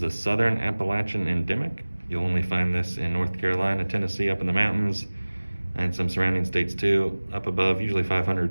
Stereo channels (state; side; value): inverted; both; correlation -1.00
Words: a southern Appalachian endemic. You'll only find this in North Carolina, Tennessee, up in the mountains, and some surrounding states too, up above, usually 500